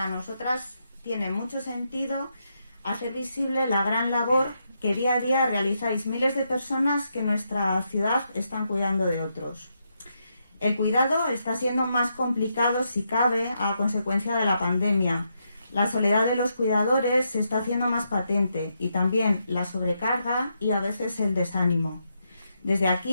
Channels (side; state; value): both; inverted; correlation -0.81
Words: nosotras tiene mucho sentido hacer visible la gran labor que día a día realizáis miles de personas que en nuestra ciudad están cuidando de otros. El cuidado está siendo más complicado, si cabe, a consecuencia de la pandemia. La soledad de los cuidadores se está haciendo más patente y también la sobrecarga y a veces el desánimo. Desde